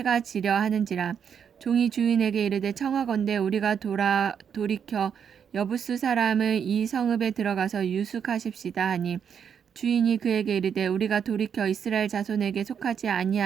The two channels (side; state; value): left; quieter; 7.6 dB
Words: 지려 하는지라. 종이 주인에게 이르되 청하건대 우리가 돌이켜 여부스 사람의 이 성읍에 들어가서 유숙하십시다 하니 주인이 그에게 이르되 우리가 돌이켜 이스라엘 자손에게 속하지